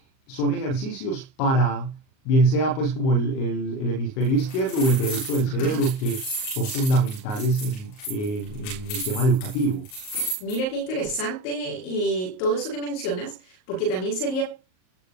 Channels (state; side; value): late; right; 38 ms